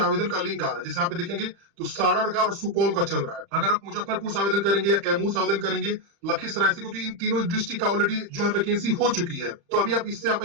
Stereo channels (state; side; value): late; left; 35 ms